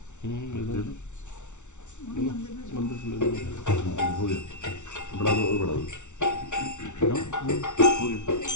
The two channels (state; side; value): late; right; 0.83 ms